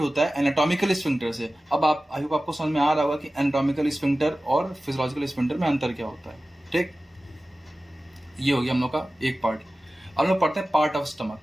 है एनाटॉमिकल स्फिंक्टर से। अब आप आई होप आपको समझ में आ रहा होगा कि एनाटॉमिकल स्फिंक्टर और फिजियोलॉजिकल स्फिंक्टर में अंतर क्या होता है, ठीक। ये हो गया हम लोग का एक पार्ट। अब हम लोग पढ़ते हैं पार्ट ऑफ स्टमक।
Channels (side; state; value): both; normal; correlation 0.96